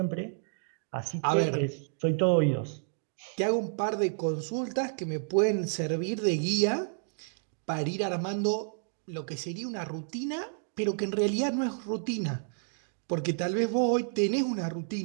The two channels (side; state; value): left; silent; digital silence